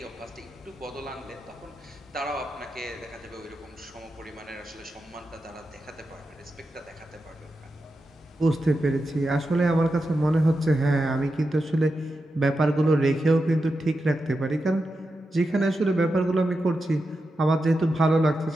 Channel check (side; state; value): both; normal; correlation 0.89